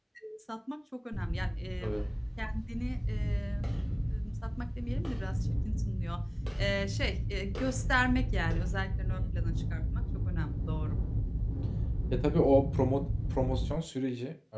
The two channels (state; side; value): identical; both; correlation 1.00